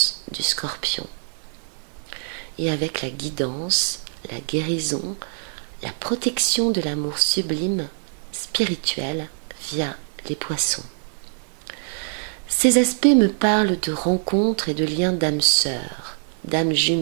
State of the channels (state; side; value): silent; left; 63 dB below the other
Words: du Scorpion. Et avec la guidance, la guérison, la protection de l'amour sublime, spirituel, via les Poissons. Ces aspects me parlent de rencontres et de liens d'âmes sœurs, d'âmes